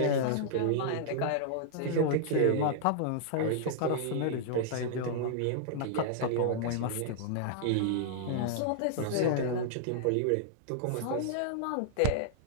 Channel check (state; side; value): different; both; correlation -0.01